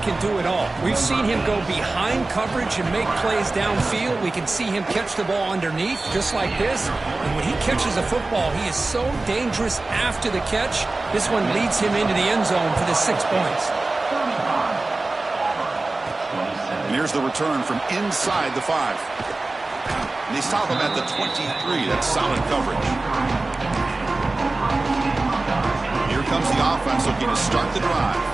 do it all. We've seen him go behind coverage and make plays downfield. We can see him catch the ball underneath, just like this. And when he catches a football, he is so dangerous after the catch. This one leads him into the end zone for the 6 points. And here's the return from inside the 5. And they stop him at the 23. That's solid coverage. Here comes the offense looking to start the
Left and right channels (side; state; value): left; quieter; 3.2 dB